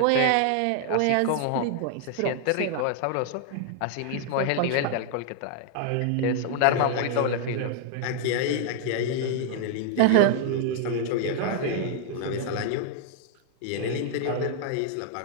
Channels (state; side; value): different; both; correlation 0.00